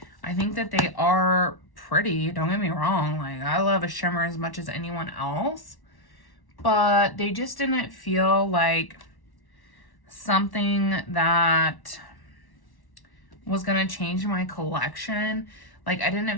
I think that they are pretty, don't get me wrong. Like, I love a shimmer as much as anyone else, but they just didn't feel like something that was gonna change my collection. Like, I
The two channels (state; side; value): late; right; 1.1 ms